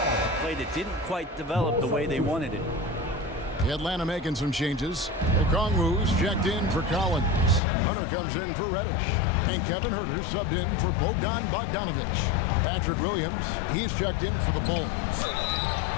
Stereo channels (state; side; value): drops out; right; at 7.6 s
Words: play that didn't quite develop the way they wanted it. Atlanta making some changes. Okongwu's checked in for Collins. Hunter comes in for Reddish. And Kevin Huerter subbed in for Bogdanovich. Patrick Williams, he's checked in for the Bulls.